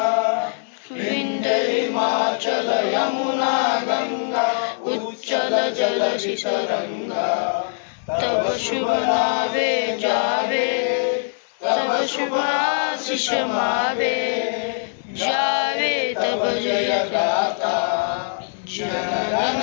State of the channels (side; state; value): right; silent; digital silence